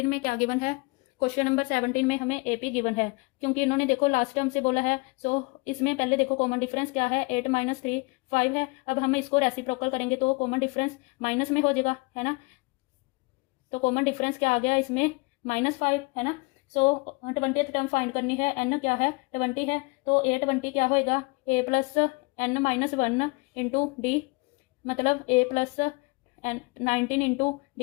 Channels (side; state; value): right; quieter; 27.8 dB